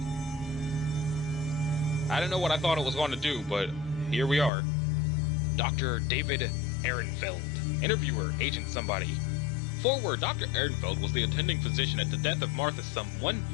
I don't know what I thought it was going to do, but here we are. Dr. David Ehrenfeld. Interviewer, Agent Somebody. Forward, Dr. Ehrenfeld was the attending physician at the death of Martha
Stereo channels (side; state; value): right; drops out; at 4.5 s